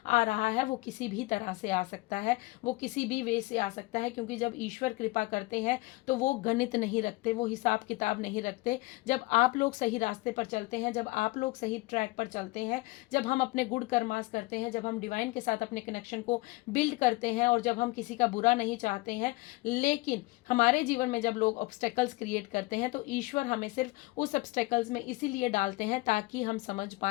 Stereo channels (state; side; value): quieter; right; 22.7 dB